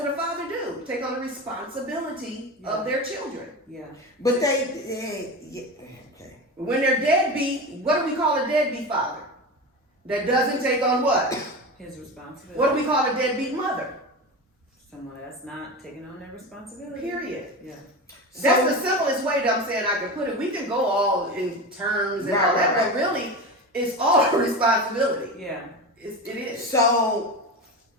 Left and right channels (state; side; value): normal; both; correlation 0.25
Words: what a father do. Take on the responsibility of their children. Yeah. But okay. When they're deadbeat, what do we call a deadbeat father? That doesn't take on what? His responsibility. What do we call a deadbeat mother? Someone that's not taking on their responsibility. Period. Yeah. That's the simplest way that I'm saying I can put it. We can go all in terms and all that, but really, it's all a responsibility. Yeah. It is. So,